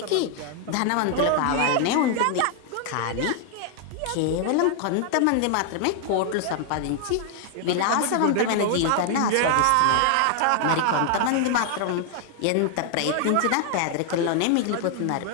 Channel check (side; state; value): both; different; correlation 0.00